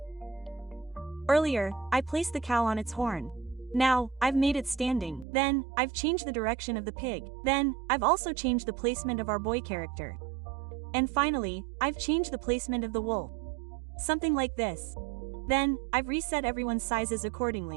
Earlier, I placed the cow on its horn. Now, I've made it standing. Then, I've changed the direction of the pig. Then, I've also changed the placement of our boy character. And finally, I've changed the placement of the wool. Something like this. Then, I've reset everyone's sizes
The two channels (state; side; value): drops out; left; at 5.2 s